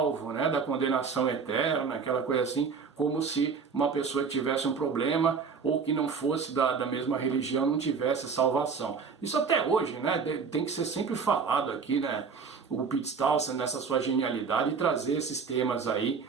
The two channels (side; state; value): left; quieter; 5.7 dB